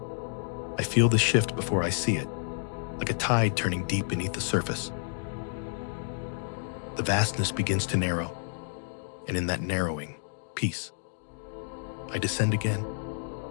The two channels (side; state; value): right; silent; digital silence